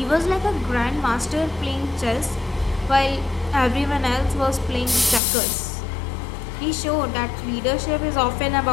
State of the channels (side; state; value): right; drops out; at 5.2 s